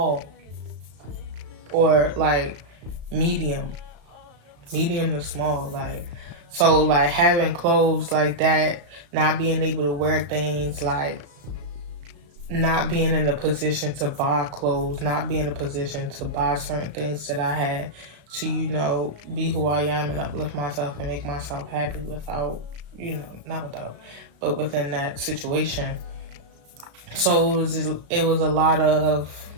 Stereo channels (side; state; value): left; late; 35 ms